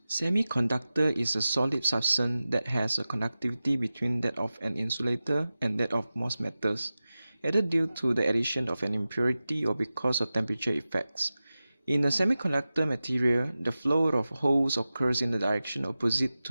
Semiconductor is a solid substance that has a conductivity between that of an insulator and that of most metals, either due to the addition of an impurity or because of temperature effects. In a semiconductor material, the flow of holes occurs in the direction opposite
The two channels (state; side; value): inverted; both; correlation -0.95